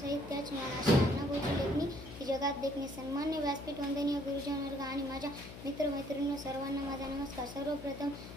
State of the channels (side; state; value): left; noise; hum, 12 dB below the sound